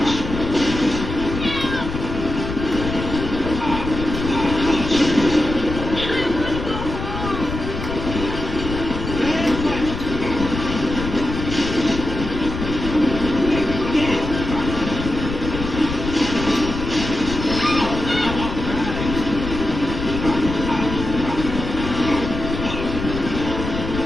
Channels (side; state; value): left; noise; rumble, 6 dB below the sound